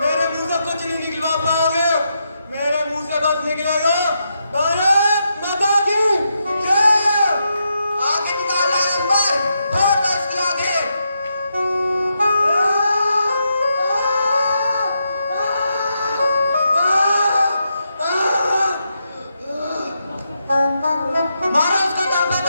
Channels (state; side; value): inverted; both; correlation -0.83